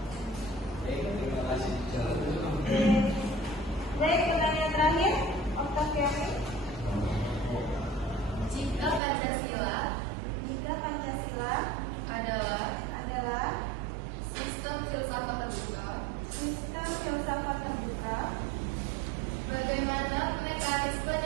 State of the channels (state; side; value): drops out; left; at 9.0 s